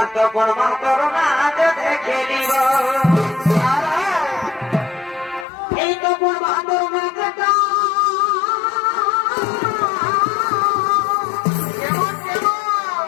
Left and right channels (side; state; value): right; drops out; at 5.5 s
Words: করবা তোর নাচে দেখে নিব এই তো করবা তোর নাচটা